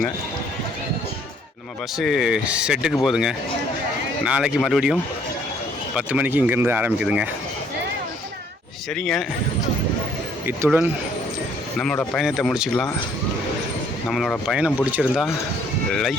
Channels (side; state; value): both; normal; correlation 0.63